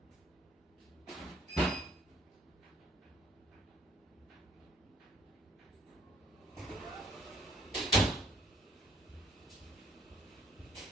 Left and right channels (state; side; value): normal; both; correlation 0.62